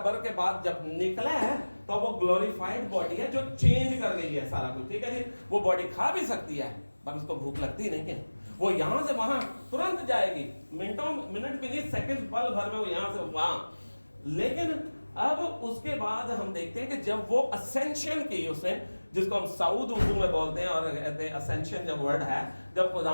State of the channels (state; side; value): inverted; both; correlation -1.00